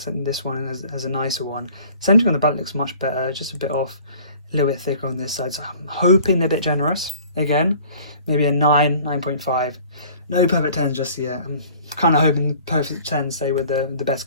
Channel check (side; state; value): both; inverted; correlation -0.50